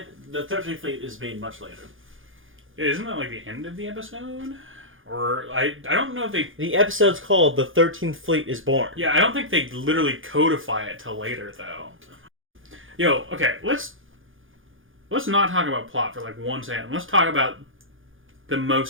The 13th Fleet is made much later. Isn't that like the end of the episode? Or, I don't know if they... The episode's called The 13th Fleet is Born. Yeah, I don't think they literally codify it till later, though. Yo, okay, let's not talk about plot for, like, 1 second. Let's talk about the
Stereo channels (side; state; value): left; late; 0.58 ms